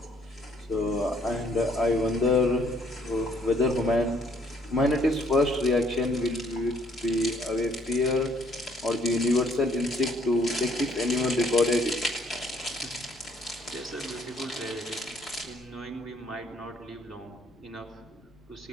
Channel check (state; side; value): normal; both; correlation 0.65